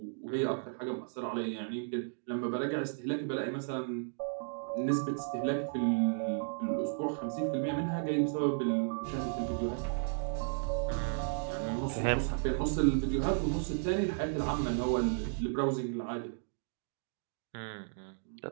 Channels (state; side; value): silent; left; digital silence